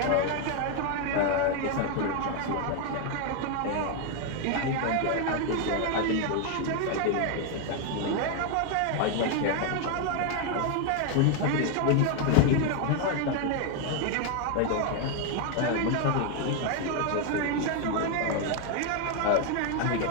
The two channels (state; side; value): different; both; correlation 0.01